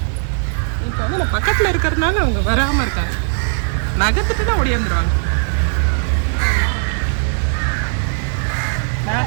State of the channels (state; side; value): silent; left; 63 dB below the other